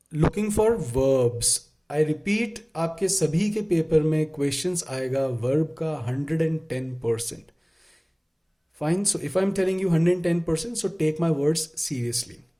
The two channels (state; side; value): identical; both; correlation 1.00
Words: looking for verbs. I repeat, आपके सभी के paper में questions आएगा verb का 110%. Fine. So if I'm telling you 110%, so take my words seriously.